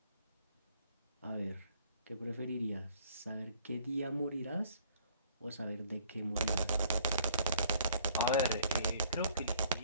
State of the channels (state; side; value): inverted; both; correlation -0.59